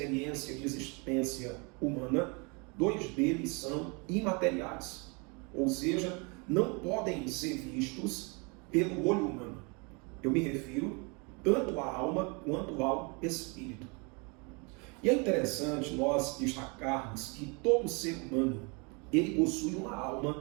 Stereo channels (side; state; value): left; quieter; 31.3 dB